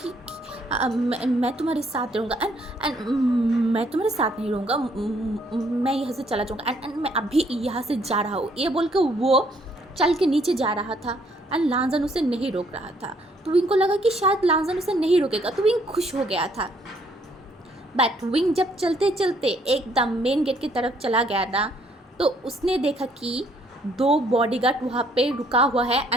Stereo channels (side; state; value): both; normal; correlation 0.67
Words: कि मैं तुम्हारे साथ रहूँगा एंड मैं तुम्हारे साथ नहीं रहूँगा, मैं यहाँ से चला जाऊँगा एंड मैं अभी यहाँ से जा रहा हूँ। ये बोल कर वो चल के नीचे जा रहा था एंड लानजन उसे नहीं रोक रहा था। तो विंग को लगा कि शायद लानजन उसे नहीं रोकेगा, तो विंग खुश हो गया था। बट विंग जब चलते चलते एकदम मेन गेट की तरफ चला गया ना, तो उसने देखा कि 2 बॉडीगार्ड वहाँ पे रुका हुआ है